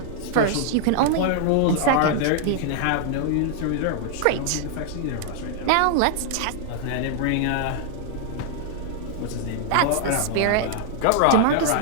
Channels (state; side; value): different; both; correlation -0.01